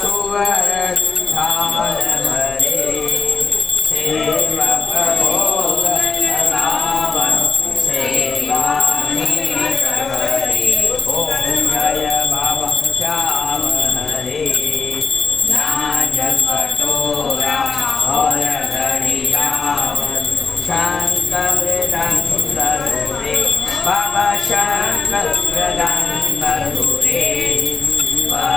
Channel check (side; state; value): right; quieter; 4.8 dB